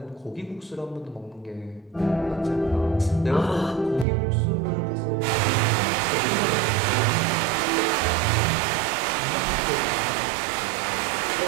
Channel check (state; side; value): drops out; left; at 4.0 s